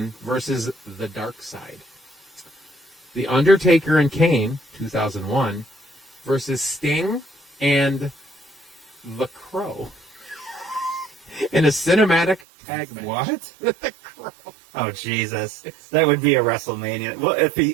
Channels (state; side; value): drops out; left; at 12.4 s